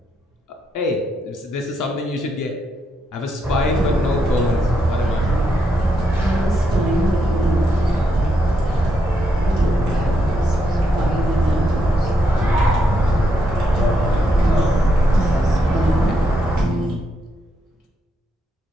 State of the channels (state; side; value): normal; both; correlation 0.80